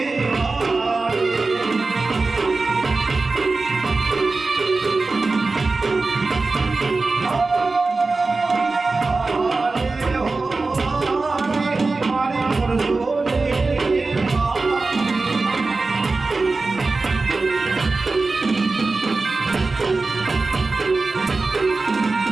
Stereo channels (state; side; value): quieter; left; 3.7 dB